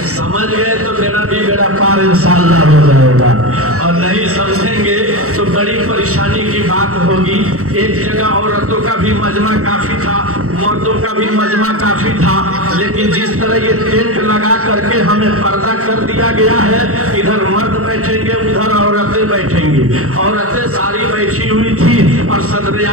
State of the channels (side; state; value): left; late; 0.64 ms